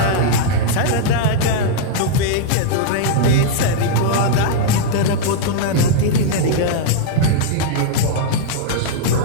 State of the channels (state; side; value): different; both; correlation -0.01